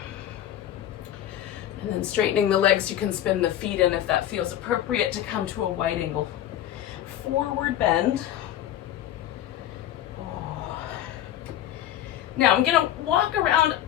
And then straightening the legs, you can spin the feet in if that feels appropriate to come to a wide angle forward bend. Now I'm gonna walk around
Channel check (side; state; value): right; quieter; 12.0 dB